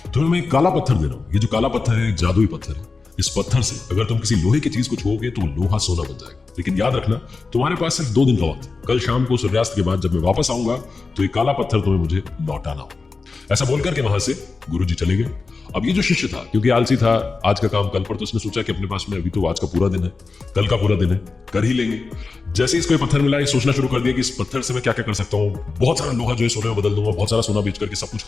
तुम्हें मैं एक काला पत्थर दे रहा हूं। ये जो काला पत्थर है एक जादुई पत्थर है। इस पत्थर से अगर तुम किसी लोहे की चीज को छुओगे तो लोहा सोना बन जाएगा। लेकिन याद रखना, तुम्हारे पास सिर्फ 2 दिन का वक्त है। कल शाम को सूर्यास्त के बाद जब मैं वापस आऊंगा तो ये काला पत्थर तुम्हें मुझे लौटाना होगा। ऐसा बोलकर के वहां से गुरुजी चले गए। अब ये जो शिष्य था, क्योंकि आलसी था, आज का काम कल पर, तो उसने सोचा कि अपने पास में अभी तो आज का पूरा दिन है, कल का पूरा दिन है, कर ही लेंगे। जैसे ही इसको ये पत्थर मिला, ये सोचना शुरू कर दिया कि इस पत्थर से मैं क्या क्या कर सकता हूँ। बहुत सारा लोहा जो है सोने में बदल दूंगा, बहुत सारा सोना बेच करके सब कुछ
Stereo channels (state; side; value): quieter; right; 4.1 dB